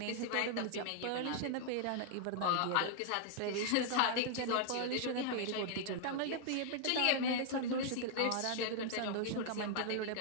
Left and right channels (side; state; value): both; different; correlation 0.00